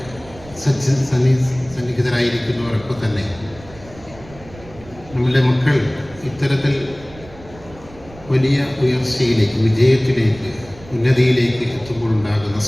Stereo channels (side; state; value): right; noise; rumble, 20 dB below the sound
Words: സന്നിഹിതരായിരിക്കുന്നവരൊക്കെ തന്നെ നമ്മളുടെ മക്കൾ ഇത്തരത്തിൽ വലിയ ഉയർച്ചയിലേക്ക്, വിജയത്തിലേക്ക്, ഉന്നതിയിലേക്ക് എത്തുമ്പോഴുണ്ടാകുന്ന